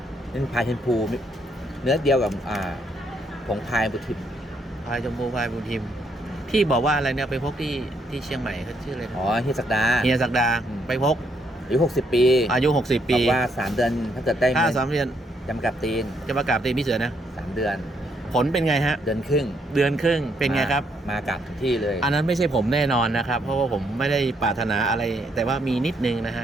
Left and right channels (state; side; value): normal; both; correlation 0.73